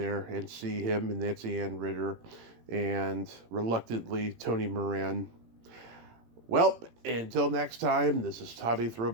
and see him and Nancy Ann Ritter and reluctantly Tony Moran. Well, until next time, this is Tommy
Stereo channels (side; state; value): left; late; 18 ms